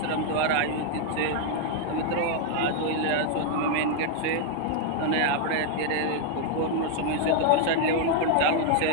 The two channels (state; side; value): different; both; correlation 0.00